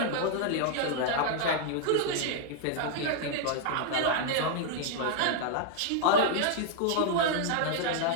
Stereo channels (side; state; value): both; different; correlation 0.00